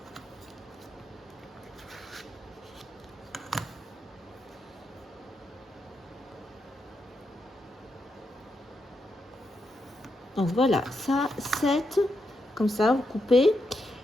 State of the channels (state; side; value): normal; both; correlation 0.83